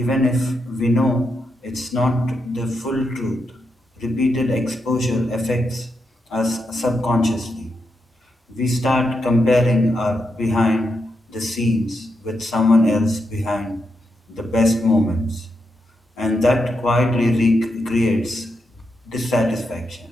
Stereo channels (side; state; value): both; normal; correlation 0.83